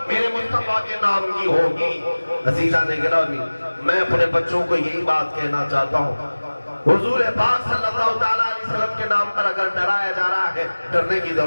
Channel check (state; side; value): inverted; both; correlation -1.00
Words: میرے مصطفیٰ کے نام کی ہوگی۔ عزیزان گرامی، میں اپنے بچوں کو یہی بات کہنا چاہتا ہوں، حضور پاک صلی اللہ علیہ وسلم کے نام پر اگر ڈرایا جا رہا ہے، ڈرنے کی